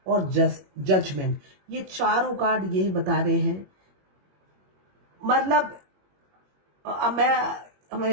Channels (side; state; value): left; late; 21 ms